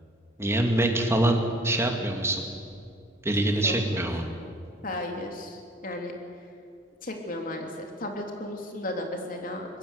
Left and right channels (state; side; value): normal; both; correlation 0.51